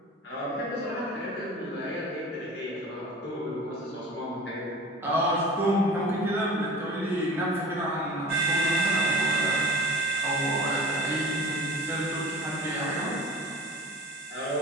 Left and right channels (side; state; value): both; normal; correlation 0.38